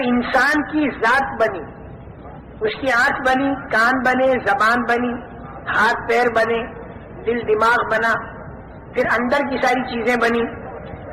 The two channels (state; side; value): identical; both; correlation 1.00